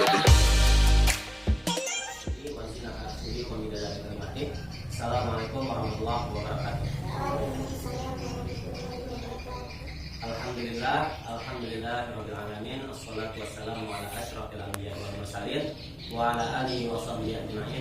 warahmatullahi wabarakatuh. Alhamdulillah rabbil alamin. Assalatu wassalamu ala asyrafil anbiya'i wal mursalin wa ala alihi wa sahbihi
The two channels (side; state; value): both; identical; correlation 1.00